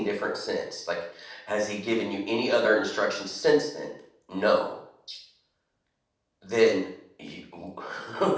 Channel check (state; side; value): identical; both; correlation 1.00